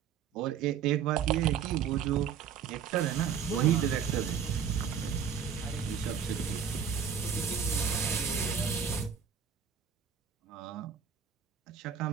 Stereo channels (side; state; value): left; quieter; 7.6 dB